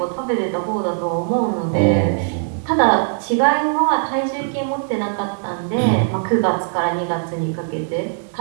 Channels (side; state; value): left; silent; digital silence